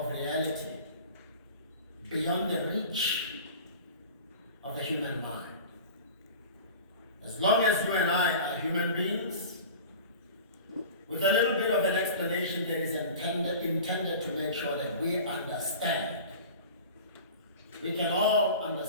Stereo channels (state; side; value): inverted; both; correlation -0.38